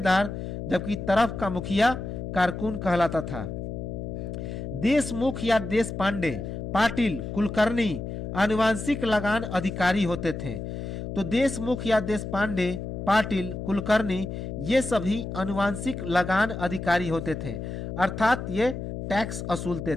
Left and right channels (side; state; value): left; noise; hum, 6 dB below the sound